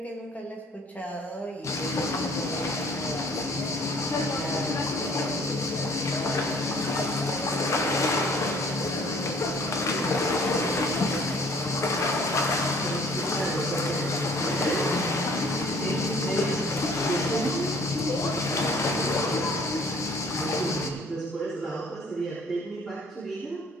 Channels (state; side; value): normal; both; correlation 0.55